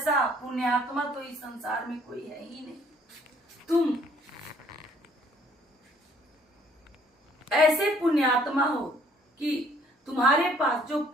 पुण्यात्मा तो इस संसार में कोई है ही नहीं। तुम ऐसे पुण्यात्मा हो कि तुम्हारे पास जो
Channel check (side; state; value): both; normal; correlation 0.61